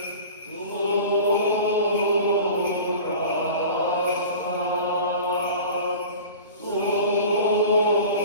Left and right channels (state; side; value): inverted; both; correlation -0.38